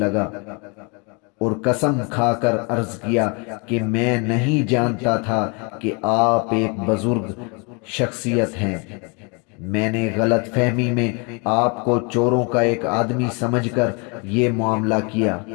اور قسم کھا کر عرض کیا کہ میں نہیں جانتا تھا کہ آپ ایک بزرگ شخصیت ہیں۔ میں نے غلط فہمی میں آپ کو چوروں کا ایک آدمی سمجھ کر یہ معاملہ کیا۔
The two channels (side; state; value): right; quieter; 32.7 dB